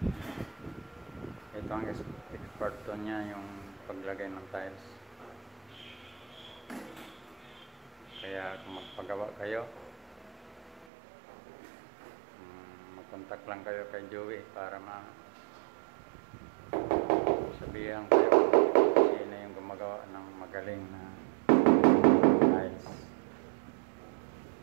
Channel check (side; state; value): left; drops out; at 10.9 s